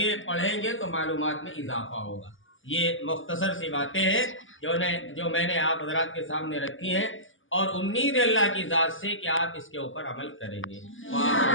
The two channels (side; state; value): right; late; 0.58 ms